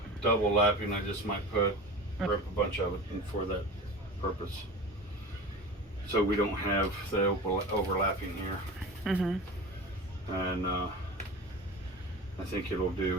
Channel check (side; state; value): both; normal; correlation 0.33